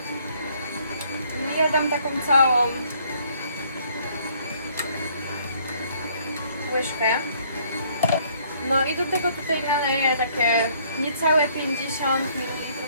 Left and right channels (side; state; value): both; inverted; correlation -0.63